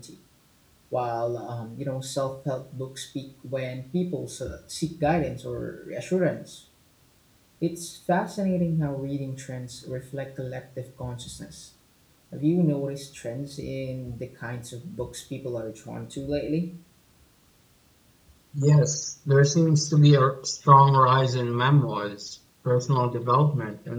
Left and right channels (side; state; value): both; identical; correlation 1.00